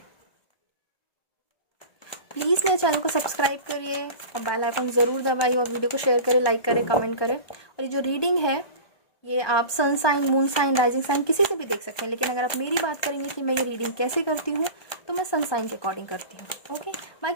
प्लीज़ मेरे चैनल को सब्सक्राइब करिए और बेल आइकन ज़रूर दबाइए, और वीडियो को शेयर करें, लाइक करें, कमेंट करें। और ये जो रीडिंग है ये आप sun sign, moon sign, rising sign किसी से भी देख सकते हैं, लेकिन अगर आप मेरी बात करेंगे कि मैं ये रीडिंग कैसे करती हूँ तो मैं सन साइन के अकॉर्डिंग करती हूँ। ओके,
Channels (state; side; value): late; right; 1.2 ms